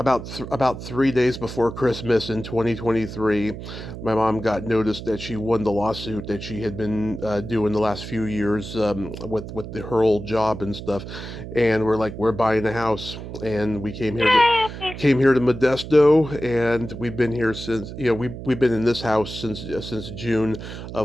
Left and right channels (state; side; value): noise; right; hum, 10 dB below the sound